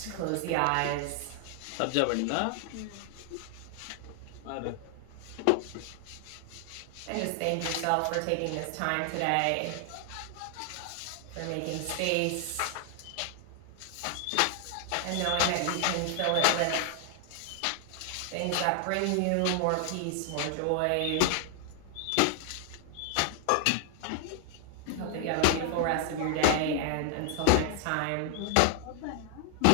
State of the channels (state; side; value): different; both; correlation 0.00